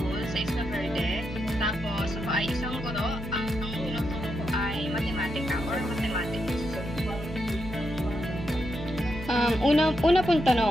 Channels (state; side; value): normal; both; correlation 0.83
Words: sa Isla Verde. Tapos ako ay isang guro. Ang tinuturo ko ay matematika or mathematics. Una pong